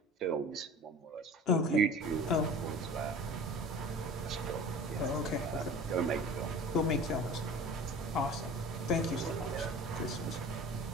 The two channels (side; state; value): both; normal; correlation 0.40